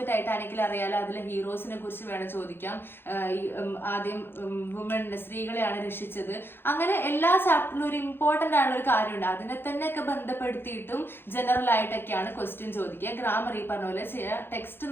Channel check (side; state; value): right; late; 0.10 ms